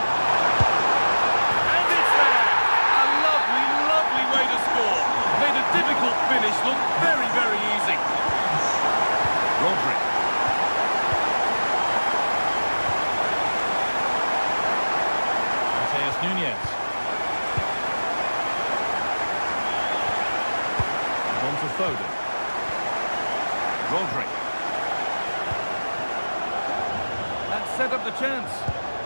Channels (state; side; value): inverted; both; correlation -1.00